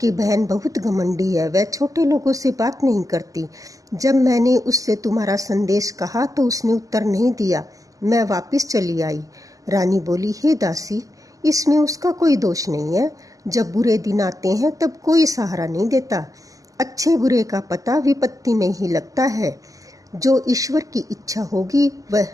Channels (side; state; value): left; late; 0.17 ms